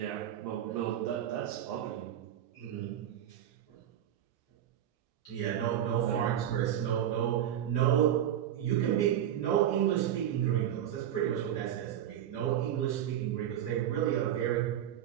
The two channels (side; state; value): left; quieter; 10.9 dB